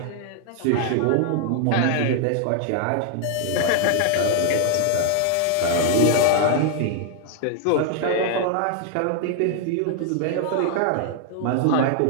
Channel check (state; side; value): different; both; correlation 0.00